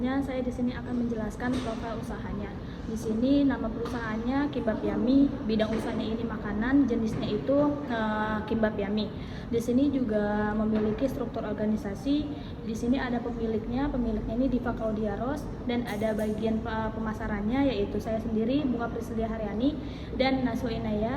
saya di sini akan menjelaskan profil usahanya. Di sini nama perusahaannya Kimbap Yummy, bidang usahanya ini makanan, jenisnya itu Kimbap Yummy. Di sini juga memiliki struktur organisasi. Di sini ada pemiliknya ini Diva Claudiaros, dan ada bagian pemasarannya yaitu saya sendiri Bunga Priscilia Haryani dan Najwa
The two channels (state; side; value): identical; both; correlation 1.00